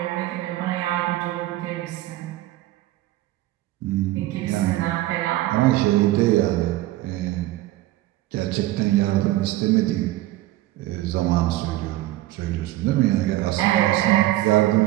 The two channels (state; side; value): quieter; left; 16.3 dB